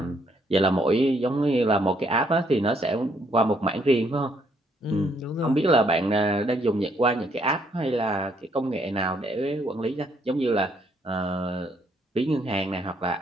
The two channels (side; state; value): both; normal; correlation 0.70